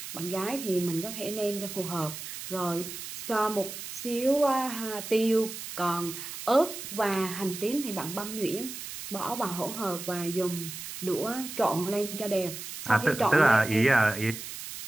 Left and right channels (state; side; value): noise; right; hiss, 9 dB below the sound